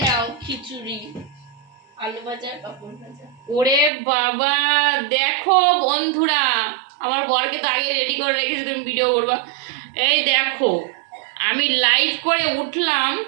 নাও খিচুড়ি, আলু ভাজা, পাপড় ভাজা। ওরে বাবা, দেখো বন্ধুরা, আমার বরকে তো আগে রেডি করে রেখেছি, তুমি ভিডিও করবা। এই দেখো, আমি লাইভ করে উঠলাম,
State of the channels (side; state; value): left; drops out; at 3.9 s